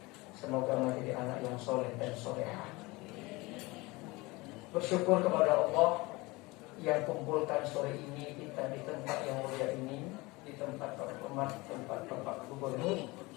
Semoga menjadi anak yang soleh dan solehah. Bersyukur kepada Allah yang kumpulkan sore ini kita di tempat yang mulia ini, di tempat terhormat, tempat Bapak Gubernur.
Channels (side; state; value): right; quieter; 23.1 dB